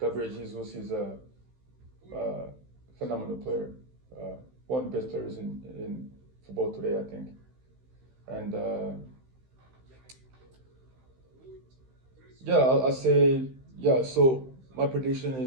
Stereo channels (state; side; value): late; left; 15 ms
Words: Jesus is a phenomenal player. One of the best players in football today, I think. And yeah, I'll say, yeah, so my prediction